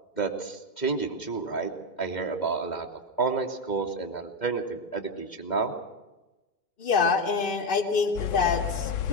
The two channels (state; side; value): late; right; 2.5 ms